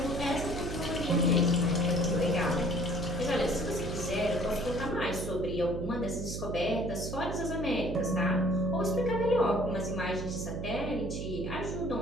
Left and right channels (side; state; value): right; noise; hum, 5 dB below the sound